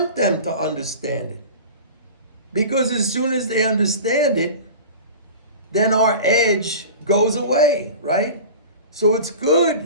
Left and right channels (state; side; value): inverted; both; correlation -0.35